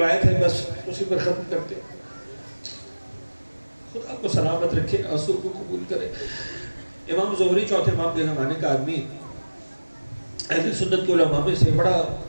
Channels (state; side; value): inverted; both; correlation -1.00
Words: ہے، بس اسی پر ختم کرتے. خدا کو سلامت رکھے، آنسو کو قبول کرے. امام زہری چوتھے امام کے زمانے کا آدمی، اہل سنت کے علماء میں سے بڑا